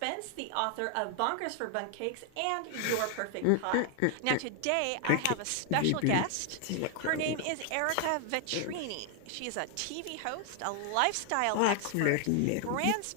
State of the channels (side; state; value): both; different; correlation 0.00